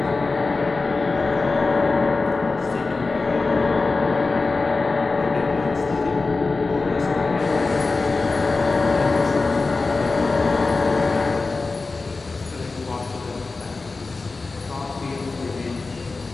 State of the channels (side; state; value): right; quieter; 3.8 dB